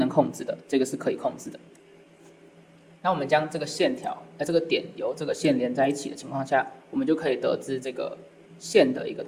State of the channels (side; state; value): both; identical; correlation 1.00